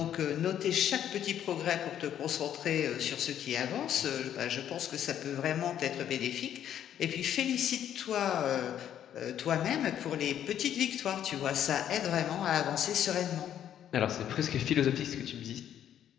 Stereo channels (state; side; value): quieter; right; 10.3 dB